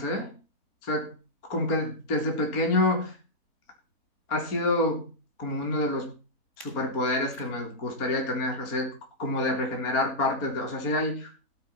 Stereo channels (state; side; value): late; right; 3.6 ms